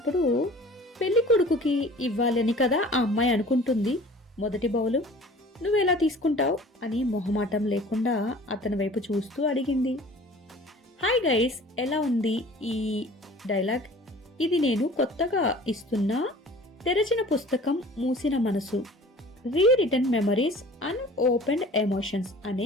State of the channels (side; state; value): both; normal; correlation 0.46